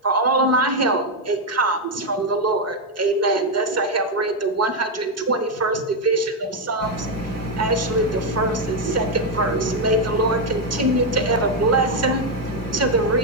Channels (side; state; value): both; normal; correlation 0.03